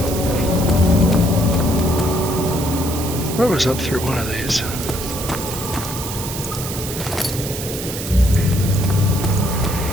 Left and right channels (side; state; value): right; noise; hiss, 8 dB below the sound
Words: What was up through one of these?